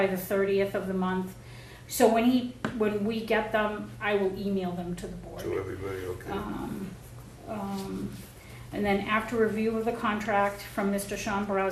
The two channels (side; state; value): both; identical; correlation 1.00